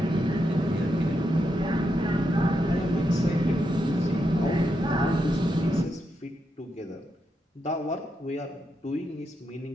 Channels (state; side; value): normal; both; correlation 0.83